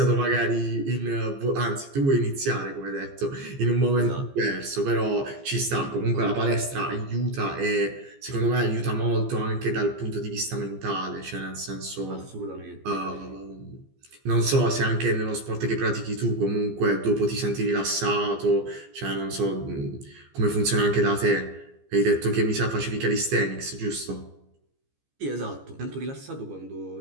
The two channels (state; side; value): late; left; 15 ms